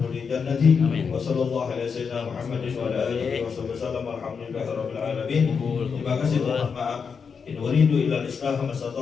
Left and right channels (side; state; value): right; quieter; 5.9 dB